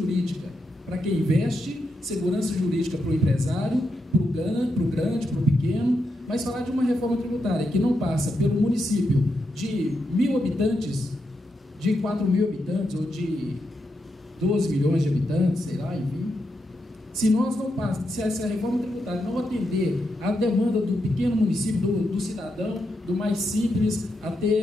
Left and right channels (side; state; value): both; normal; correlation 0.84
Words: para quem investe, segurança jurídica para o empresário, para o grande, para o pequeno, mas falar de uma reforma tributária que não passa pelo município de 1.000 habitantes, de 4.000 habitantes ou de 12 milhões de habitantes, sei lá, enfim. Se essa reforma tributária não atender à demanda do pequeno município, do cidadão, do mais simples